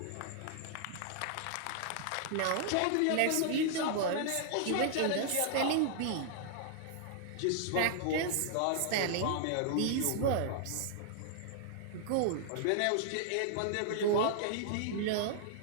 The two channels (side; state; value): both; different; correlation -0.01